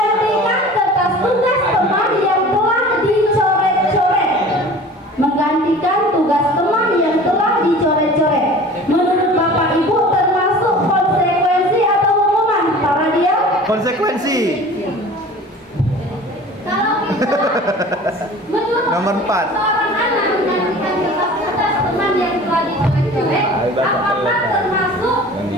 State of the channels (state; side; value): normal; both; correlation 0.42